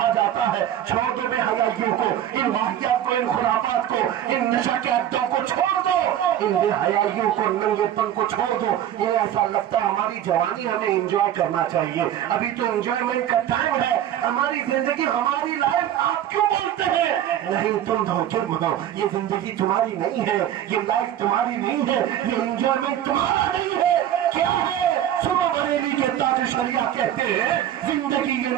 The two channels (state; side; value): quieter; left; 11.1 dB